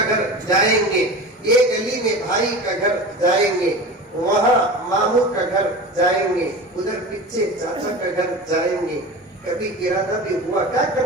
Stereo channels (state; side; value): normal; both; correlation 0.32